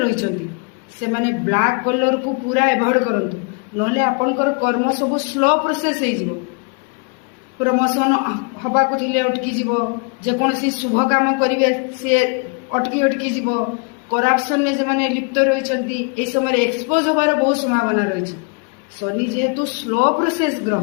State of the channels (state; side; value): quieter; right; 34.8 dB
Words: ରହିଛନ୍ତି ସେମାନେ ବ୍ଲାକ୍ କଲର୍କୁ ପୁରା ଏଭଏଡ୍ କରନ୍ତୁ, ନହେଲେ ଆପଣଙ୍କର କର୍ମ ସବୁ ସ୍ଲୋ ପ୍ରୋସେସ୍ ହେଇଯିବ। ପ୍ରମୋସନ୍ ହେବାକୁ ଥିଲେ ଅଟକିଯିବ, ଯେକୌଣସି ଶୁଭ କାମ କରିବେ ସିଏ ଅଟକି ଯିବ। କରାପସନ୍ରେ ଯେଉଁମାନେ ଲିପ୍ତ ରହିଛନ୍ତି ଏ ସମୟରେ ଏକ୍ସପୋଜ୍ ହେବାର ବହୁତ ସମ୍ଭାବନା ରହିଛି। ଶନି ଯେହେତୁ ସ୍ଲୋ ପ୍ରୋସେସ୍